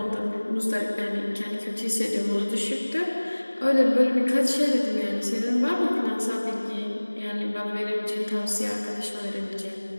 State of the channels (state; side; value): inverted; both; correlation -1.00